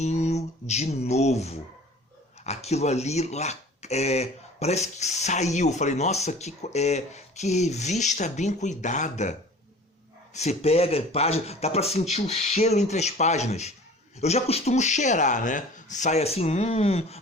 de novo. Aquilo ali parece que saiu. Eu falei, nossa, que revista bem cuidada. Você pega a página, dá pra sentir o cheiro entre as páginas. Eu já costumo cheirar, né? Sai assim,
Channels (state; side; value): normal; both; correlation 0.44